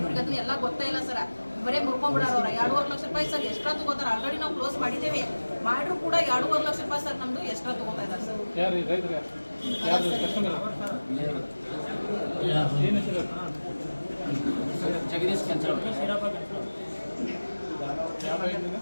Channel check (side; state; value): both; inverted; correlation -1.00